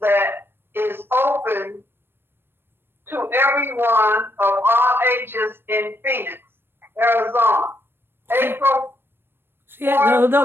that is open to everyone of all ages in Phoenix, Arizona. April. Yeah,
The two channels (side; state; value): left; late; 0.10 ms